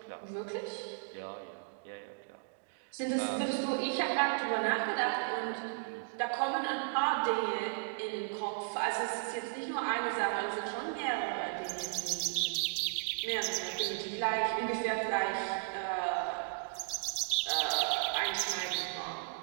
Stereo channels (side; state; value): left; silent; digital silence